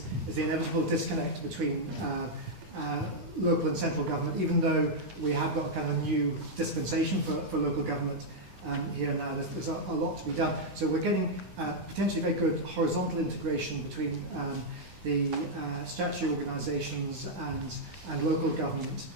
the inevitable disconnect between local and central government, even though we have got a kind of a new dispensation for local government here now. There's a lot to be done. So we're getting potentially very good horizontal integration between the statutory organisations and local government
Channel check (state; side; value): late; left; 9.8 ms